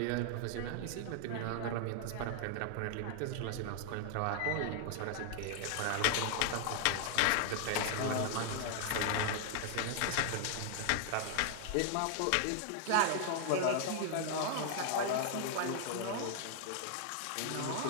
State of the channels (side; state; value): both; different; correlation 0.00